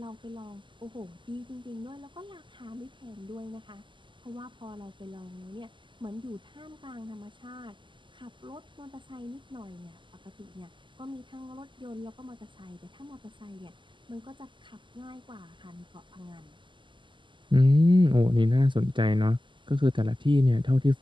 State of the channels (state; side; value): late; left; 0.24 ms